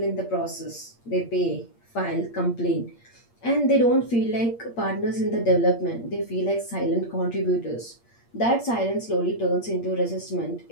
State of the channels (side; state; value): right; late; 8.6 ms